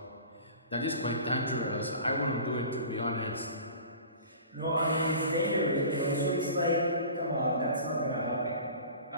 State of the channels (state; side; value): inverted; both; correlation -0.41